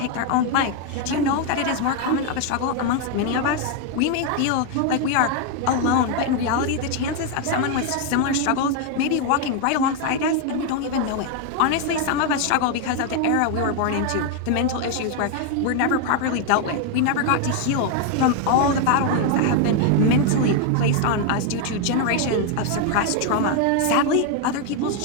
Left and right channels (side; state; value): both; different; correlation 0.01